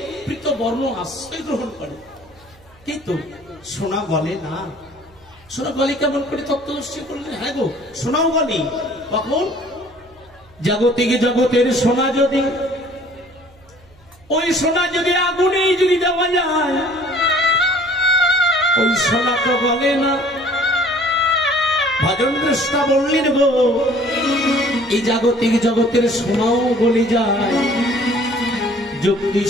পৃত বর্ণ আশ্রয় গ্রহণ করে, কিন্তু সোনা গলে না। সোনা গলে কেমন করে? তত্ত্বদর্শী করলেন হ্যাঁ গো, সোনাও গলে কখন? জাগতিক জগতের সোনা যদি, ওই সোনা যদি আগুনে যদি দেওয়া যায়, ওই সোনা তো গলে না। ভজন কৃষ্ণা বললেন গো এই জাগতিক জগতের সোনাও গলে যায়, যুক্তি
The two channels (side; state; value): right; noise; hum, 28 dB below the sound